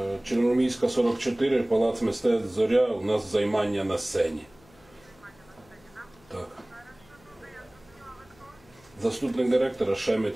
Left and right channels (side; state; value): left; noise; hum, 28 dB below the sound